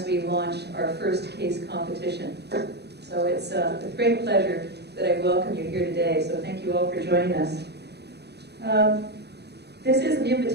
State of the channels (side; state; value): left; late; 0.48 ms